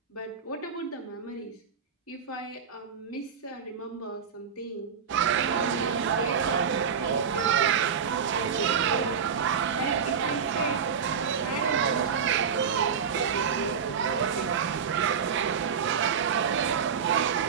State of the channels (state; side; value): quieter; left; 6.8 dB